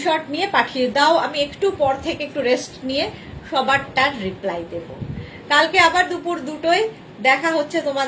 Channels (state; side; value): identical; both; correlation 1.00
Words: নিয়ে পাঠিয়ে দাও, আমি একটু পর থেকে একটু রেস্ট নিয়ে সবারটার রিপ্লাই দেব। কালকে আবার দুপুর 2টোয় দেখা হচ্ছে